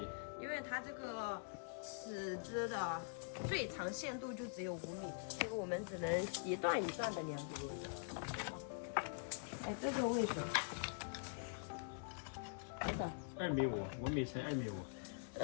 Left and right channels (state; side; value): silent; right; digital silence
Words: 因为它这个尺子的最长限度就只有5米，所以我们只能一段一段的量。哎，这个位置多少2.5米，5米乘2.5